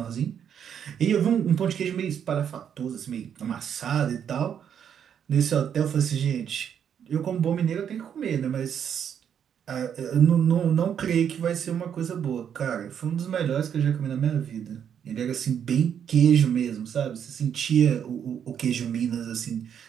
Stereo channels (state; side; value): quieter; left; 8.5 dB